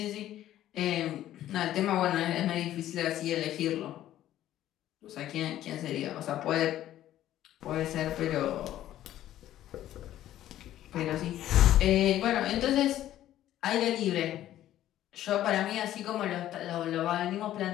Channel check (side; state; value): right; quieter; 12.9 dB